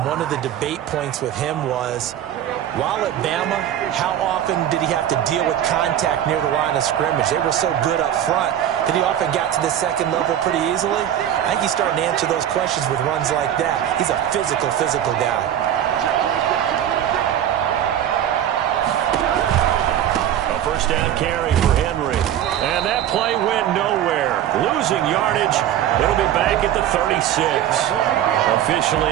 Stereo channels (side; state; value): left; quieter; 10.8 dB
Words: one of the debate points with him was, while at Bama, how often did he have to deal with contact near the line of scrimmage? They were so good up front that he often got to the 2nd level pretty easily. I think he's starting to answer those questions with runs like that. He's a physical guy. A 1st down carry for Henry. And that play went nowhere. Losing yardage. It'll be back at the 36. Officially,